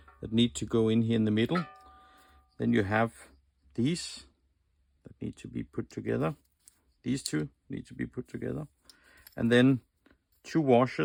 that need to go in here in the middle. Then you have these that need to be put together. These two need to be put together, and then two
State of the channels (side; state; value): both; identical; correlation 1.00